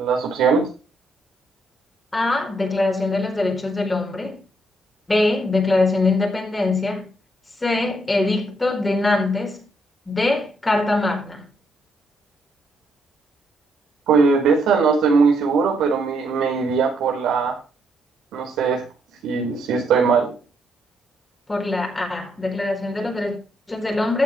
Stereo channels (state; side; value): normal; both; correlation 0.74